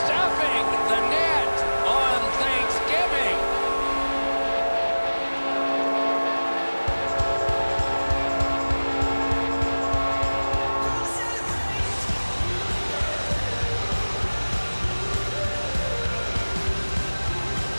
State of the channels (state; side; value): inverted; both; correlation -1.00